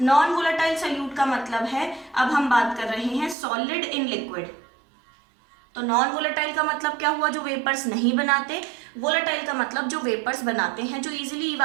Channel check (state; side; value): drops out; left; at 3.4 s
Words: Non volatile solute का मतलब है, अब हम बात कर रहे हैं सॉलिड इन लिक्विड। तो नॉन वोलेटाइल का मतलब क्या हुआ, जो वेपर्स नहीं बनाते। वोलेटाइल का मतलब जो वेपर्स बनाते हैं, जो इजीली